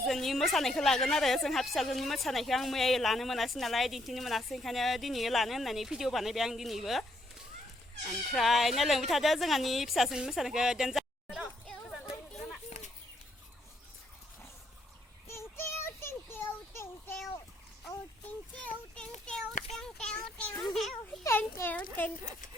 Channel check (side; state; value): both; normal; correlation 0.72